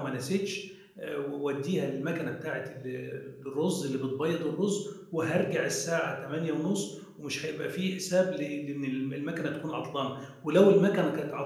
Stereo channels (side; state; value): both; identical; correlation 1.00